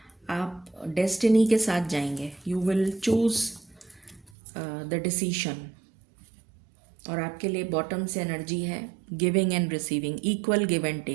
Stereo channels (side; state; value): left; drops out; at 4.3 s